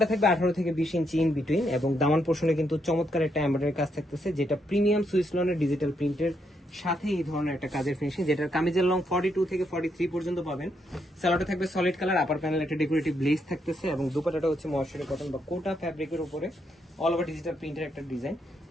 থাকবে 18 থেকে 20 ইঞ্চি ইন বিটুইন এবং দামান পোর্শনে কিন্তু চমৎকার একটা এমব্রয়ডারি কাজ থাকতেছে, যেটা প্রিমিয়াম সুইস লনের ডিজিটাল প্রিন্টের সাথে এই ধরনের একটা কাজের ফিনিশিং, যেটার কামিজের লং 42 থেকে 43 পর্যন্ত পাবেন। সালোয়ারটা থাকবে সলিড কালার, আপার প্যানেল একটা ডেকোরেটিভ লেস থাকতেছে এবং দুপাট্টাটা হচ্ছে ময়শ্চারি কটন বা কোটা ফ্যাব্রিকের উপরে অল ওভার ডিজিটাল প্রিন্টের একটা ডিজাইন।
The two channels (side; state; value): both; normal; correlation 0.77